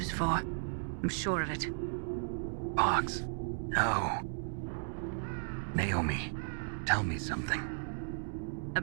for. I'm sure of it. Fox? No. Naomi, tell me something.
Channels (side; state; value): left; silent; digital silence